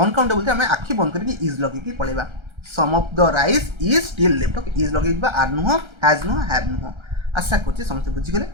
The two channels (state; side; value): late; left; 1.3 ms